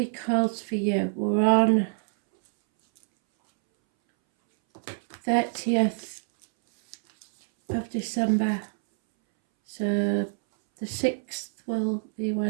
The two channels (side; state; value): left; silent; 61 dB below the other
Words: holds for you. We're on 30th of December, so the 6th will be